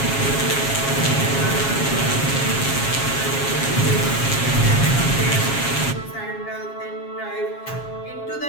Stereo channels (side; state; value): right; late; 7.3 ms